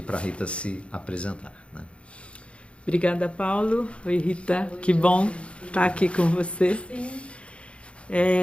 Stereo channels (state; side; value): late; right; 0.060 ms